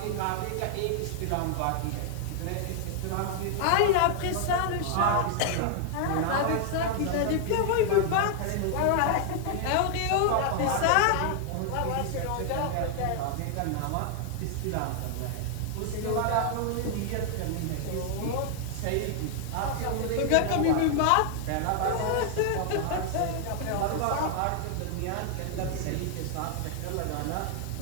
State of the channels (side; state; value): both; different; correlation 0.00